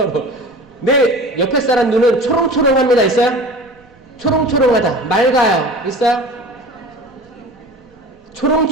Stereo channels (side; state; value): both; normal; correlation 0.38